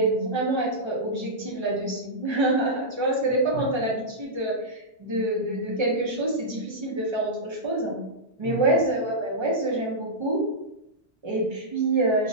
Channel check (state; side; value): normal; both; correlation -0.11